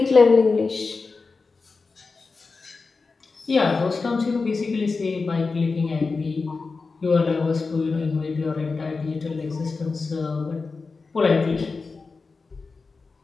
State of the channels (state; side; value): quieter; right; 4.2 dB